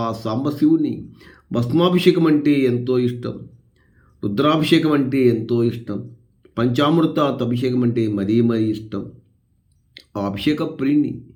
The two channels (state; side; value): identical; both; correlation 1.00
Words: సాంబశివుని భస్మాభిషేకం అంటే ఎంతో ఇష్టం, రుద్రాభిషేకం అంటే ఎంతో ఇష్టం, పంచామృత అభిషేకం అంటే మరీ ఇష్టం. ఆ అభిషేక ప్రియుని